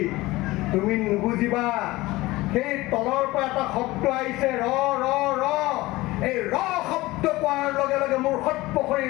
তুমি নুবুজিবা, সেই তলৰ পৰা এটা শব্দ আহিছে, ৰ ৰ ৰ। এই ৰ শব্দ কোৱাৰ লগে লগে মোৰ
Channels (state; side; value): quieter; right; 19.4 dB